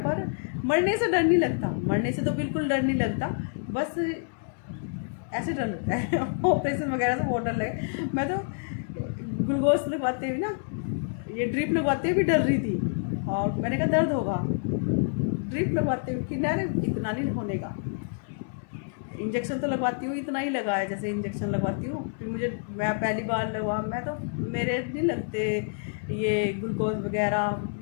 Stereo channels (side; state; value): right; silent; digital silence